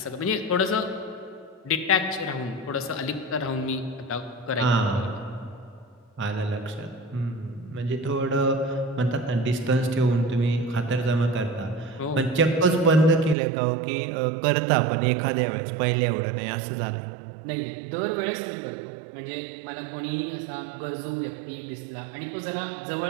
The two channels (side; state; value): left; drops out; at 13.4 s